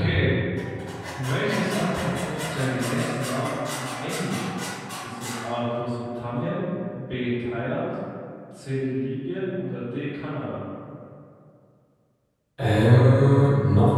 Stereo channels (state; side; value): identical; both; correlation 1.00